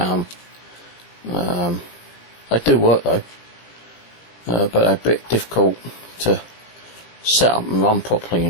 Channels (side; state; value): right; late; 18 ms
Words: £5. They do work though, but they're a bit difficult to set up and run properly, you